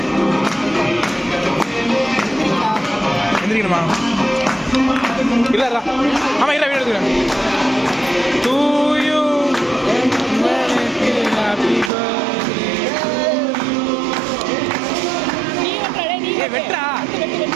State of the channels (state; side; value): drops out; left; at 11.9 s